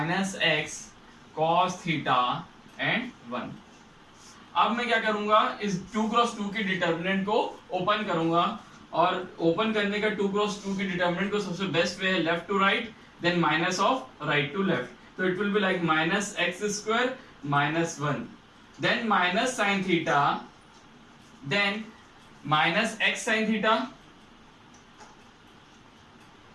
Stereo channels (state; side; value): identical; both; correlation 1.00